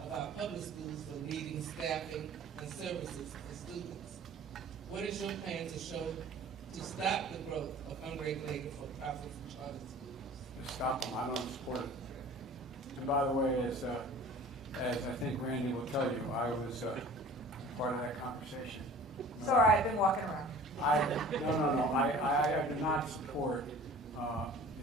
our public schools for needing staffing and services for students. What is your plan to stop the growth of unregulated for-profit charter schools? Stop them. I don't support it. And by the way, as I think Randy will tell you, I was part of that conversation. Sorry, I've been walking around. No. I do not support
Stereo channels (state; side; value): normal; both; correlation 0.45